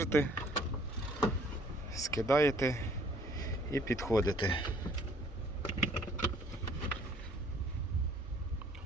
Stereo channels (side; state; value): both; normal; correlation 0.58